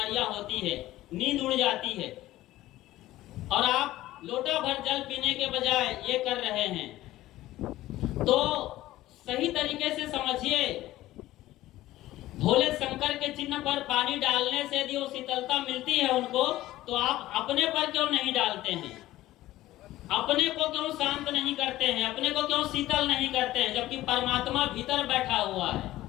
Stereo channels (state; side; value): quieter; right; 15.8 dB